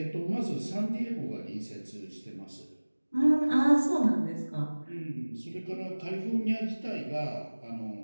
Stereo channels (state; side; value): inverted; both; correlation -1.00